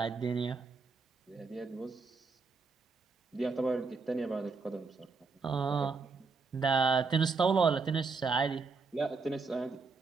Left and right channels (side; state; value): left; quieter; 4.4 dB